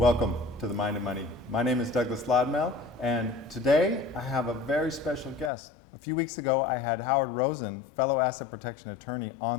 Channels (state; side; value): drops out; right; at 5.5 s